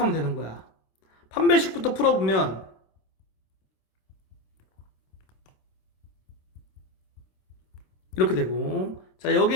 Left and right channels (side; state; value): right; late; 26 ms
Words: 되는 거야. 판별식부터 풀어보면 이렇게 되고, 자, 여기